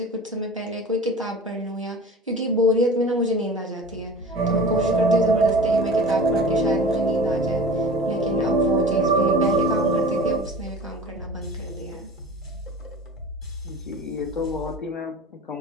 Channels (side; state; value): both; normal; correlation 0.38